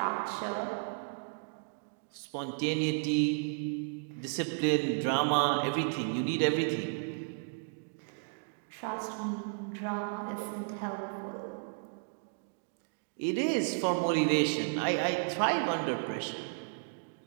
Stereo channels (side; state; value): left; silent; digital silence